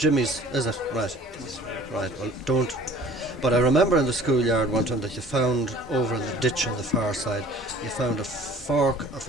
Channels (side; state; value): both; normal; correlation 0.49